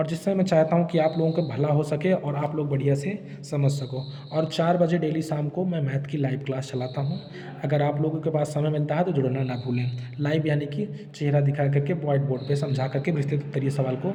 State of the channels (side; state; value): both; identical; correlation 1.00